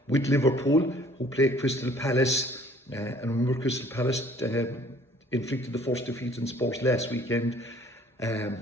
with Liverpool, who play Crystal Palace. And remember, Crystal Palace inflicted the first defeat in Spurs last weekend.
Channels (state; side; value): normal; both; correlation 0.56